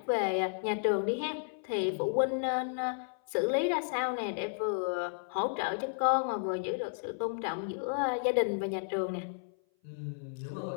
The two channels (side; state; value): right; silent; 56 dB below the other